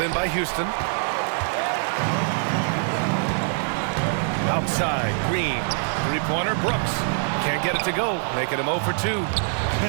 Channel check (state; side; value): silent; left; 58 dB below the other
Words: in by Houston. Outside, Green. Three-pointer, Brooks. Can't get it to go, making him 0 for 2.